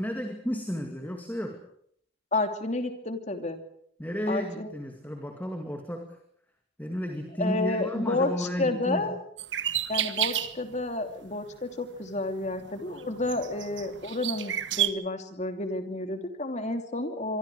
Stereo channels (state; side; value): normal; both; correlation 0.28